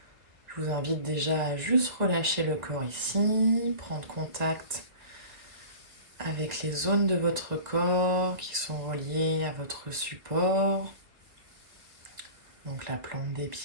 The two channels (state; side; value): late; left; 1.6 ms